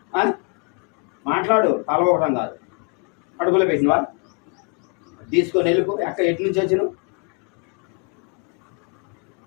మాట్లాడు, కలవకడం కాదు. కడుపులో పెట్టినావా? తీసుకొని వెళ్ళిపో. ఎటు నుంచి వచ్చినావు?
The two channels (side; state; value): right; quieter; 37.3 dB